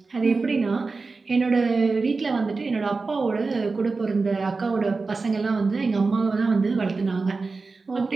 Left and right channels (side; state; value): left; quieter; 4.0 dB